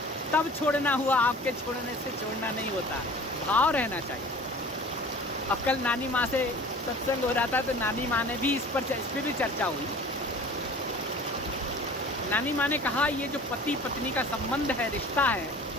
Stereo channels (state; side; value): normal; both; correlation 0.44